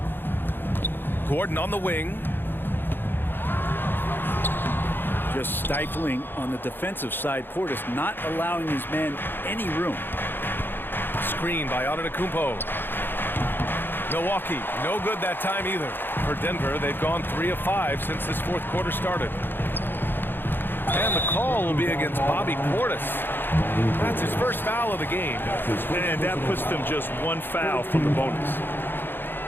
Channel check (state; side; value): late; right; 0.098 ms